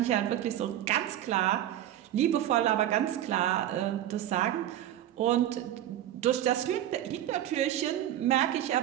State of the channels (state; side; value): quieter; left; 12.1 dB